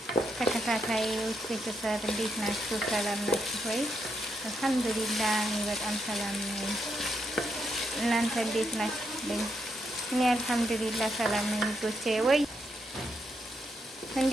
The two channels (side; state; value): both; normal; correlation 0.80